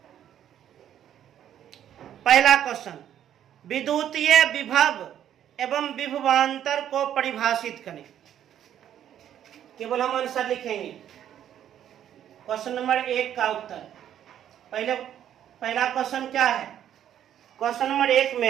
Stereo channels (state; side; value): quieter; left; 10.5 dB